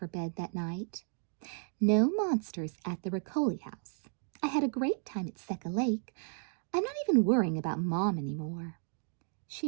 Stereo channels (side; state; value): left; silent; 55 dB below the other